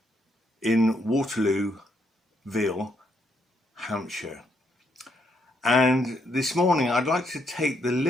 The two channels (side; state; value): both; normal; correlation 0.75